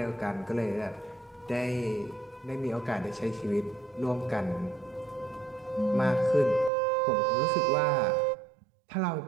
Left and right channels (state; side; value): drops out; left; at 6.7 s